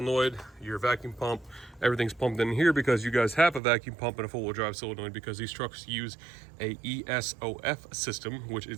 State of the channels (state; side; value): drops out; left; at 3.6 s